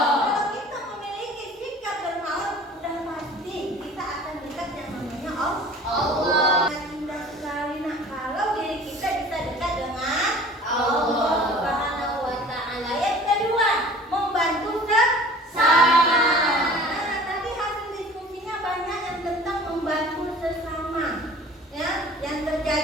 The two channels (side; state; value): both; normal; correlation 0.45